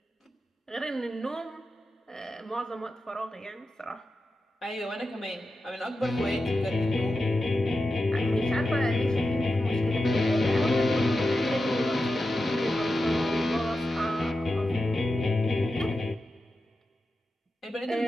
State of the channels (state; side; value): normal; both; correlation 0.91